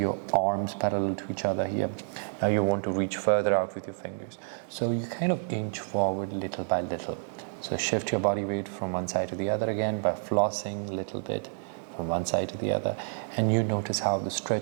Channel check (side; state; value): left; silent; digital silence